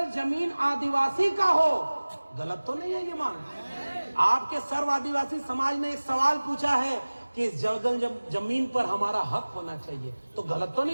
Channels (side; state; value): both; inverted; correlation -1.00